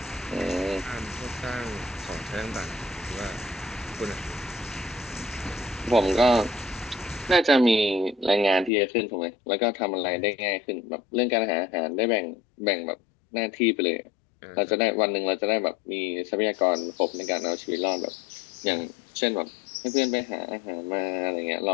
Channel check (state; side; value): drops out; right; at 8.7 s